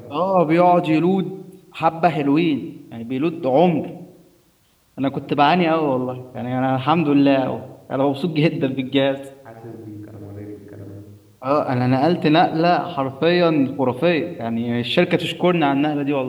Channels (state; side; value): identical; both; correlation 1.00